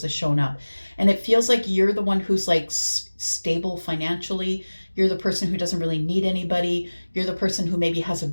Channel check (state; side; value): inverted; both; correlation -1.00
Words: has shown up. And it feels like you're the one who's like stable financially. You're the person who doesn't really need anybody. You're the person who maybe has a